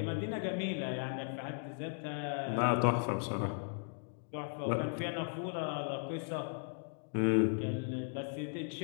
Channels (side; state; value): right; silent; 53 dB below the other